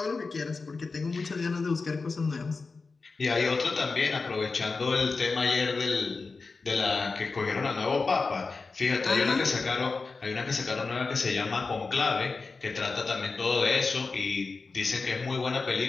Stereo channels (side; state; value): right; quieter; 4.2 dB